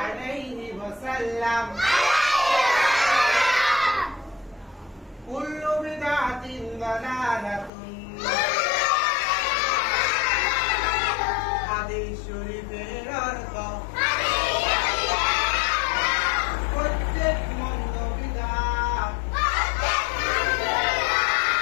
عليه وسلم كل بدعة ضلالة হাদিস শরীফের অর্থ প্রত্যেক মন্দ বিদআত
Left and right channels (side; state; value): right; drops out; at 7.7 s